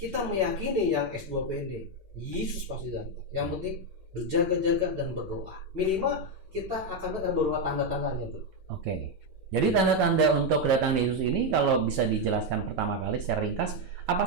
meyakini yang S2P ini, Yesus pasti datang. Yang penting berjaga-jaga dan berdoa. Minimal kita akan berdoa tanda-tandanya tuh. Oke. Jadi tanda-tanda untuk kedatangan Yesus ini kalau bisa dijelaskan pertama kali secara ringkas, apa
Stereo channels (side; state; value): left; late; 5.2 ms